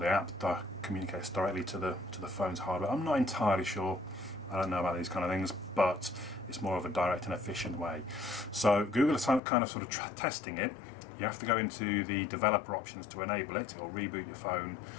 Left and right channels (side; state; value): right; drops out; at 9.4 s